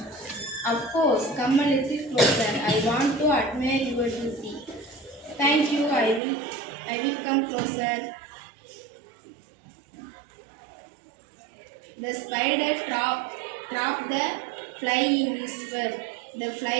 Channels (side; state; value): left; drops out; at 6.2 s